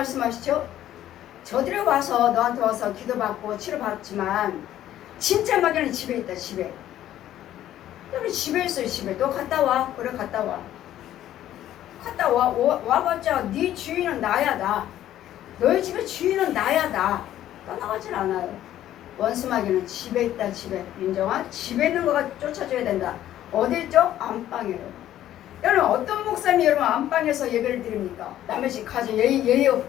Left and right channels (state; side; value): quieter; right; 12.4 dB